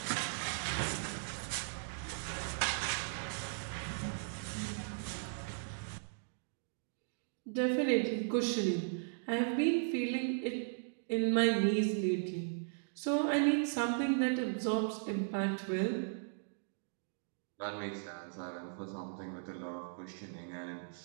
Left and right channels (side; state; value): left; silent; digital silence